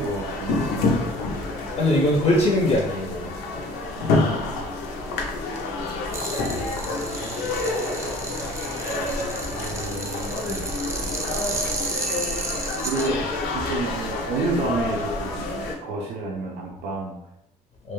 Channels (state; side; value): normal; both; correlation 0.45